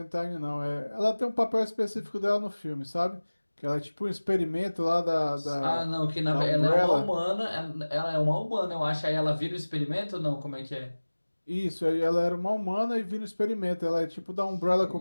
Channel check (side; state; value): both; inverted; correlation -1.00